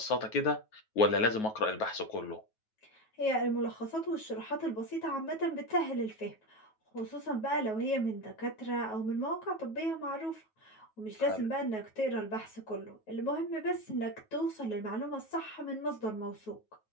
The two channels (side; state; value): right; late; 9.3 ms